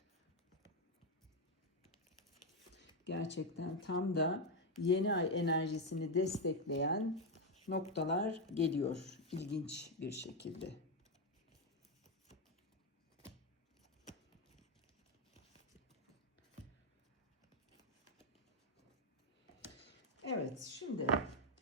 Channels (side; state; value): both; normal; correlation 0.04